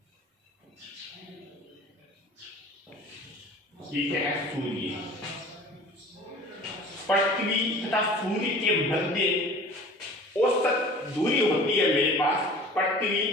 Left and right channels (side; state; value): both; normal; correlation 0.44